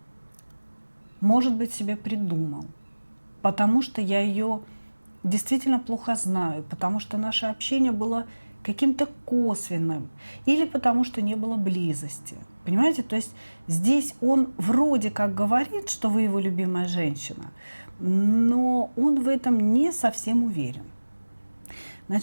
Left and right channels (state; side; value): inverted; both; correlation -1.00